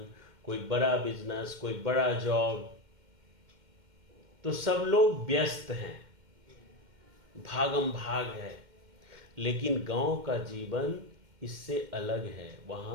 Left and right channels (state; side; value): late; left; 2.1 ms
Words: कोई बड़ा बिजनेस, कोई बड़ा जॉब। तो सब लोग व्यस्त हैं, भागम भाग है। लेकिन गांव का जीवन इससे अलग है।